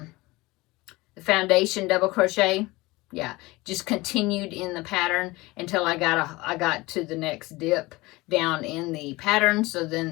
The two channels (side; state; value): right; quieter; 21.4 dB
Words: foundation double crochet. Yeah, just continued in the pattern until I got to the next dip down in the pattern. So